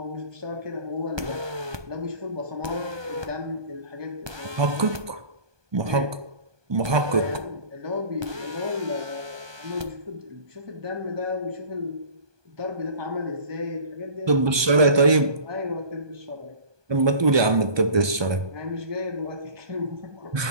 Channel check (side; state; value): left; late; 1.2 ms